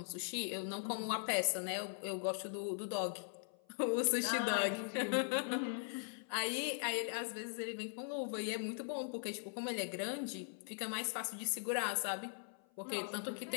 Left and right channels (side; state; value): right; silent; 51 dB below the other